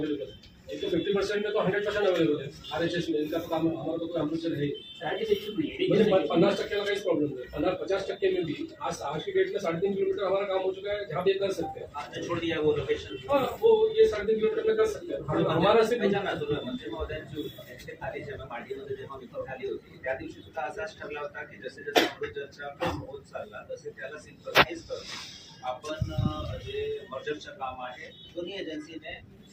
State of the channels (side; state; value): both; identical; correlation 1.00